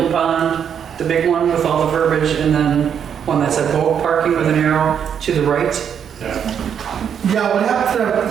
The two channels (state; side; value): quieter; left; 8.1 dB